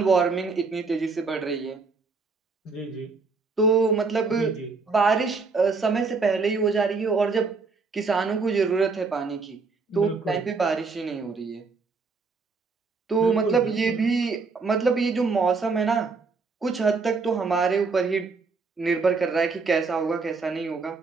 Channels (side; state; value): left; quieter; 4.4 dB